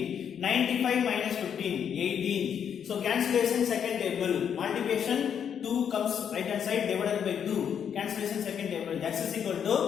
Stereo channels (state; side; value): quieter; right; 8.1 dB